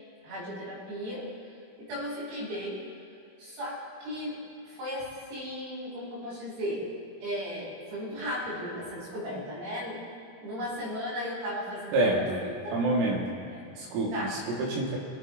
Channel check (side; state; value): left; late; 22 ms